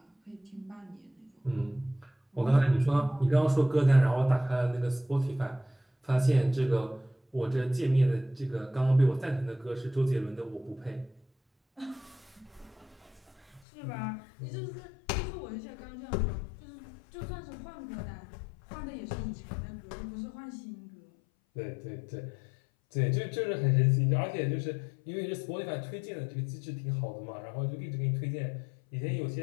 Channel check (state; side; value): drops out; right; at 13.6 s